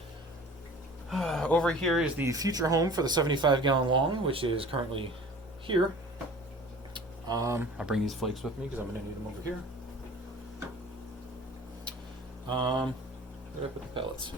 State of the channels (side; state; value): both; normal; correlation 0.43